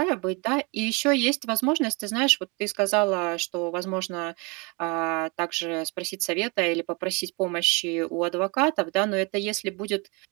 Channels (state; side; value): quieter; left; 29.6 dB